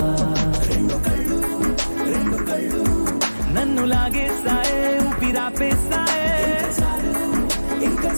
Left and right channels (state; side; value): inverted; both; correlation -1.00